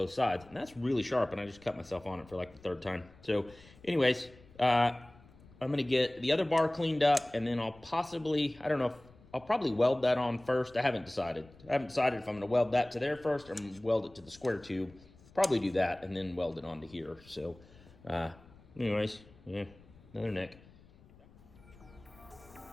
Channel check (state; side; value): noise; left; rumble, 24 dB below the sound